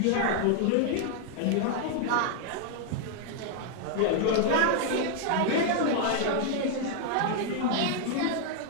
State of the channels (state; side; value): different; both; correlation 0.00